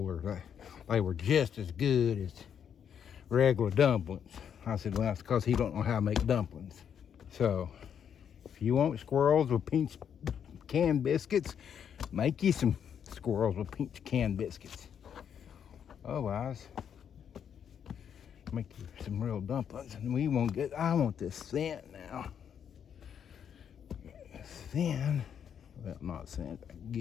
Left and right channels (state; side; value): quieter; right; 8.3 dB